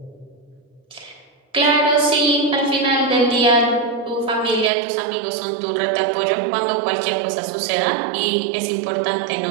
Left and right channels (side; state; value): left; drops out; at 4.7 s